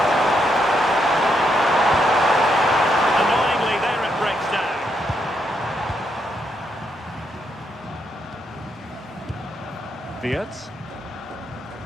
Annoyingly, there it breaks down. Wirtz.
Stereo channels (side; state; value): both; normal; correlation 0.78